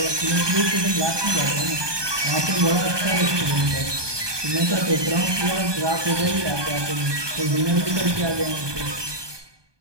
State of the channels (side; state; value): left; late; 1.2 ms